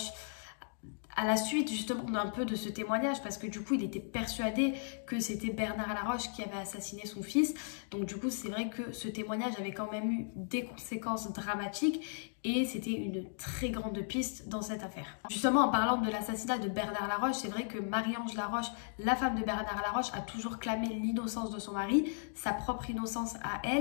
à la suite justement d'un peu de ce témoignage, parce que du coup il était persuadé que c'était Bernard Laroche qui avait assassiné son fils. Donc du coup c'est vrai que ce témoignage avait quand même eu des conséquences dramatiques et c'était une très grande piste dans cette affaire. Justement, en parlant de l'assassinat de Bernard Laroche, c'est vrai que Marie-Ange Laroche, la femme de Bernard Laroche, a toujours clamé l'innocence de son mari, sa propre innocence à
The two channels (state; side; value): silent; right; digital silence